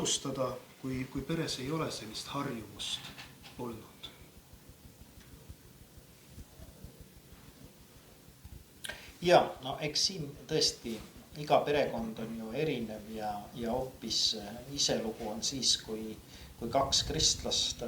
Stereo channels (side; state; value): both; identical; correlation 1.00